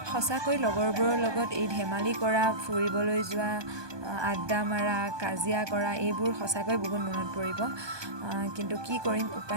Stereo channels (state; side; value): late; left; 1.2 ms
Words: সঁচাকৈ লগৰবোৰৰ লগত এই ধেমালি কৰা, ফুৰিবলৈ যোৱা, আড্ডা মাৰা, কাজিয়া কৰা এইবোৰ সঁচাকৈ বহুত মনত পৰিব, কিন্তু কি কৰিম,